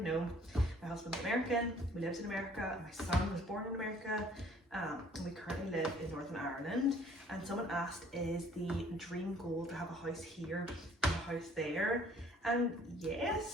know, my husband's American, we lived in America, my son was born in America, and we currently live in Northern Ireland. And someone asked, is the dream goal to have a house here and a house there? And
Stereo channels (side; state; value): both; normal; correlation 0.57